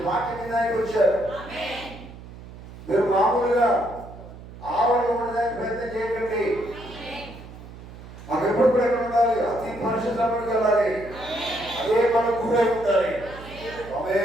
వాక్యం వినడానికి వచ్చారు. మీరు మామూలుగా ఆవరణ ఉండడానికి ప్రయత్నం చేయకండి. మాకు ఎప్పుడు కూడా ఎక్కడ ఉండాలి? అతి పరిశుద్ధంలోకి వెళ్ళాలి. అదే మనం గురై ఉండాలి.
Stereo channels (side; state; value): right; noise; hum, 16 dB below the sound